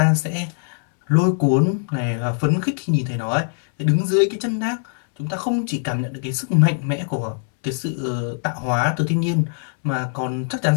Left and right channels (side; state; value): right; silent; 65 dB below the other